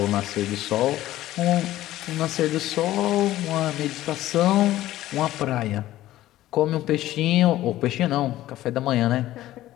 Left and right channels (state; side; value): quieter; right; 14.9 dB